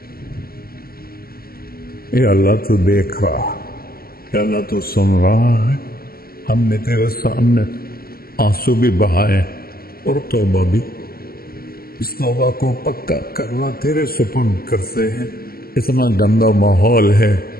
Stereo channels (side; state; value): right; late; 0.43 ms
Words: یا اللہ تو دیکھ رہا، یا اللہ تو سن رہا ہے، ہم نے تیرے سامنے آنسو بھی بہائے اور توبہ بھی، اس توبہ کو پکا کرنا تیرے سپرد کرتے ہیں۔ اتنا گندا ماحول ہے